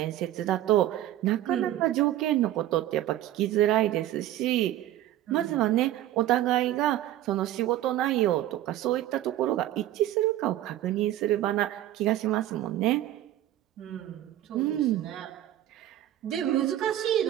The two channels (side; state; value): left; quieter; 13.4 dB